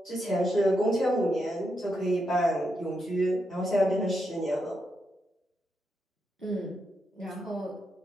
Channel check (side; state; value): both; normal; correlation 0.83